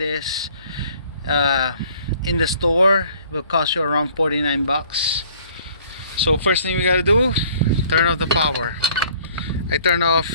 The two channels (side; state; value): both; inverted; correlation -0.57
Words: in the store, it will cost you around 49 bucks. So first thing we gotta do, turn off the power. I